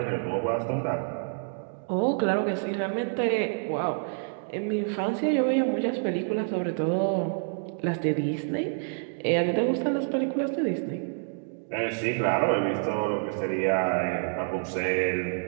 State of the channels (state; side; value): silent; left; digital silence